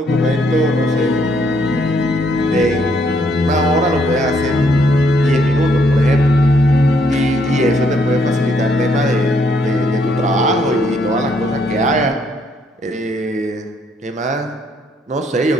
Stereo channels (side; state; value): both; normal; correlation 0.71